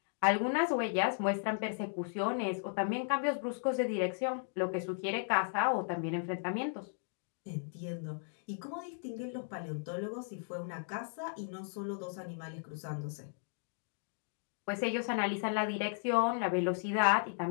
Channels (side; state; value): right; silent; digital silence